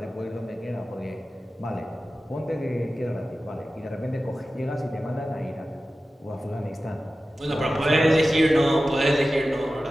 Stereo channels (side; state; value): both; normal; correlation 0.94